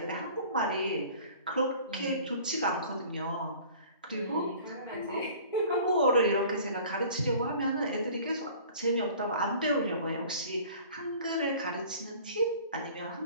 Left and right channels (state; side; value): inverted; both; correlation -0.47